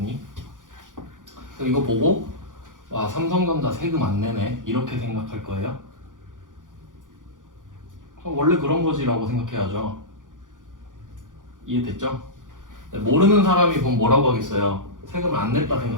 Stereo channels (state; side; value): late; left; 0.88 ms